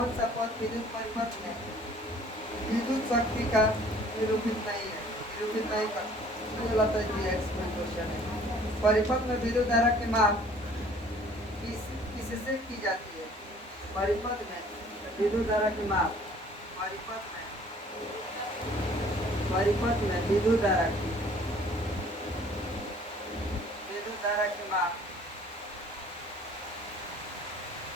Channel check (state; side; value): normal; both; correlation 0.54